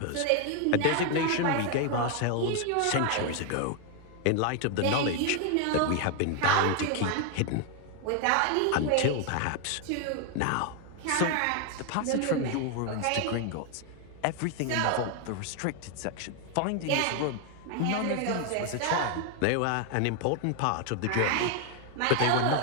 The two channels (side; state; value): both; different; correlation 0.00